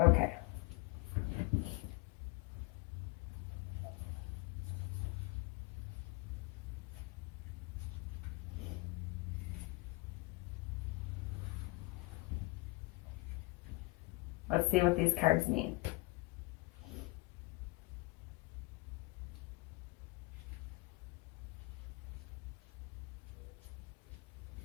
Okay. Let's see what these cards mean.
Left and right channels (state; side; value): quieter; right; 23.8 dB